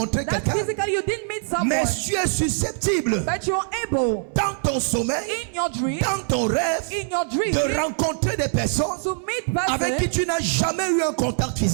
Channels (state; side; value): silent; left; 63 dB below the other